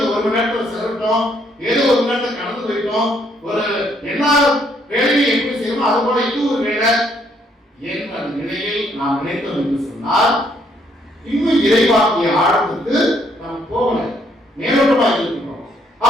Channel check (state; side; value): normal; both; correlation 0.69